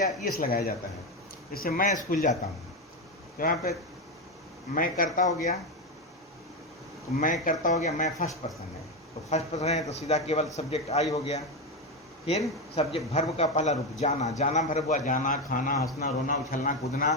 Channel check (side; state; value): both; normal; correlation 0.12